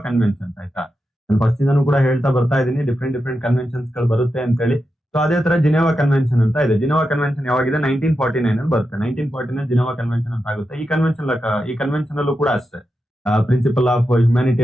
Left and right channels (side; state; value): both; normal; correlation 0.88